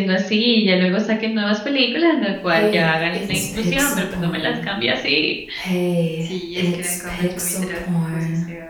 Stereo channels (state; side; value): identical; both; correlation 1.00